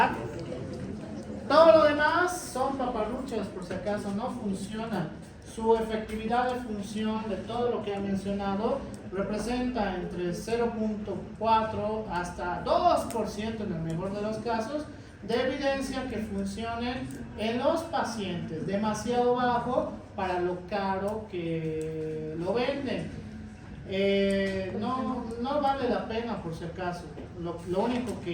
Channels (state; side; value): identical; both; correlation 1.00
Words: Todo lo demás son paparruchas, por si acaso, no funciona. Su efectividad de función de todo lo que he mencionado representa entre 0.4 hasta 2% en el mejor de los casos de evidencia que funcionen en los pacientes, demasiado bajo para lo caro que lo venden. No vale la pena, por si acaso. Lo único